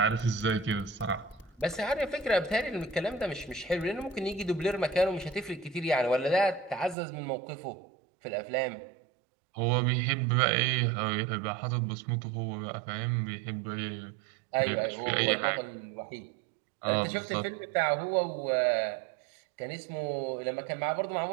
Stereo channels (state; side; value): drops out; left; at 7.0 s